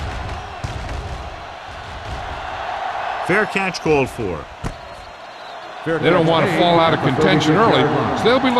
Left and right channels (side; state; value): both; identical; correlation 1.00